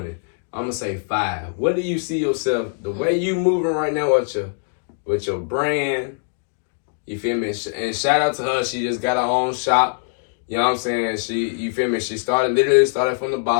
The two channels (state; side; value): silent; right; 64 dB below the other